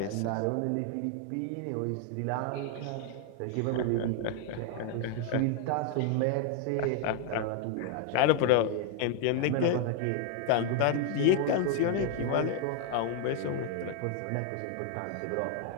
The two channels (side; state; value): both; different; correlation 0.00